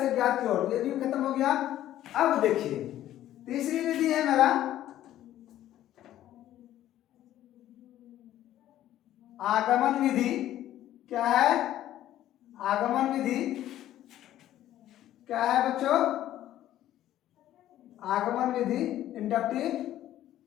ज्ञात की ओर, ये भी खत्म हो गया। अब देखिए तीसरी विधि है मेरा आगमन विधि। क्या है, आगमन विधि क्या है बच्चों, आगमन विधि, इंडक्टिव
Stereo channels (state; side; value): quieter; right; 12.9 dB